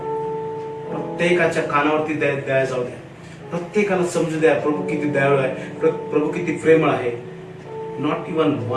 प्रत्येकाच्या कानावरती दया जाऊ द्या. प्रत्येकाला समजू द्या प्रभू किती दयाळू आहे, प्रभू किती प्रेमळ आहे. Not even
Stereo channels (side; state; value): both; identical; correlation 1.00